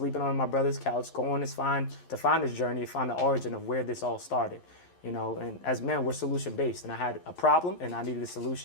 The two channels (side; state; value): right; late; 11 ms